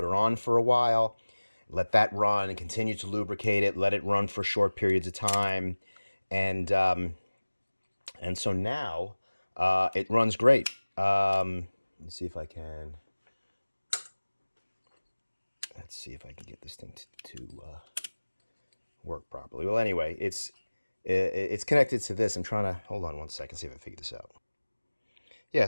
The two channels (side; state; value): both; inverted; correlation -1.00